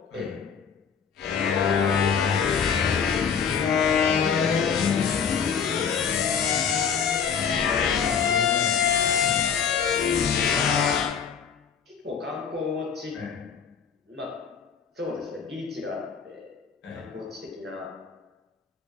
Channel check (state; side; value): quieter; right; 6.9 dB